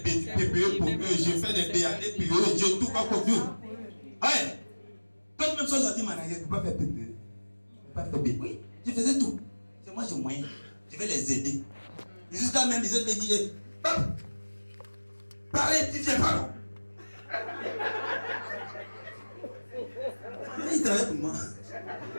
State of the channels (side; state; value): both; inverted; correlation -1.00